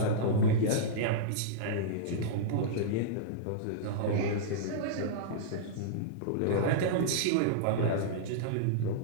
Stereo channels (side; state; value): both; different; correlation -0.03